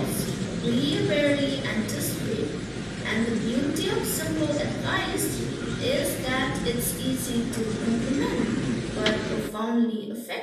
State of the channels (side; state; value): both; identical; correlation 1.00